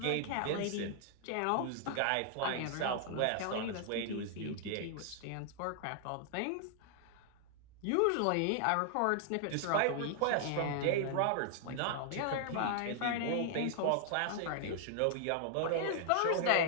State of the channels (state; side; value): different; both; correlation -0.01